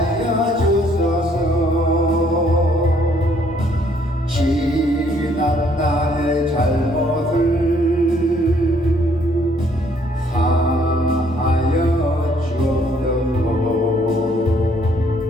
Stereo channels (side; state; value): both; normal; correlation 0.65